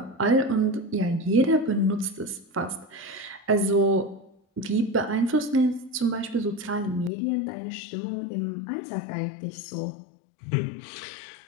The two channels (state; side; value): drops out; right; at 7.1 s